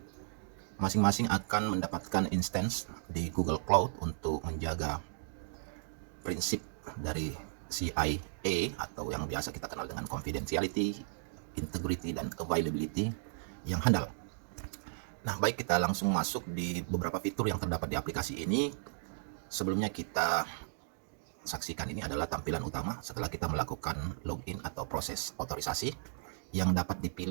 masing-masing akan mendapatkan instance di Google Cloud untuk menjaga prinsip dari CIA atau yang biasa kita kenal dengan confidentiality, integrity, dan availability yang handal. Nah, baik, kita langsung masuk di beberapa fitur yang terdapat di aplikasi ini. Sebelumnya kita saksikan ini adalah tampilan utama setelah kita melakukan login atau proses otorisasi yang dapat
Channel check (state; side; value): silent; left; digital silence